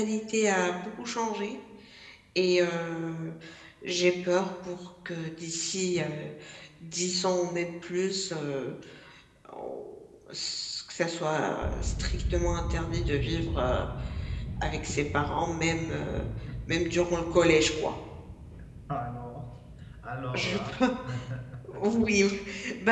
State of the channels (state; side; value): identical; both; correlation 1.00